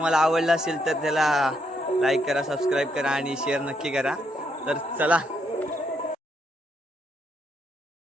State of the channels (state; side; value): normal; both; correlation 0.76